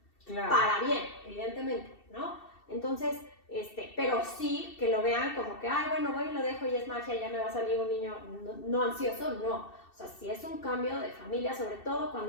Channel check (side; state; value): right; late; 2.7 ms